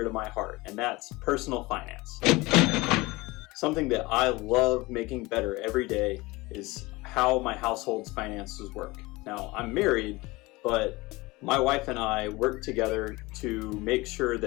to my heart, and that's personal finance. Something that I love making better every day is how my household's finances work. Now, I'm married, but my wife and I work together to make sure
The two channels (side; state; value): right; quieter; 22.2 dB